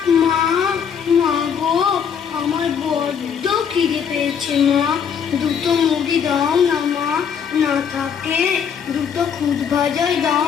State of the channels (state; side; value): quieter; right; 7.4 dB